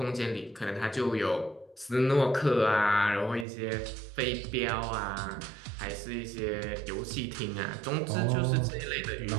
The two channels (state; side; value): drops out; left; at 3.5 s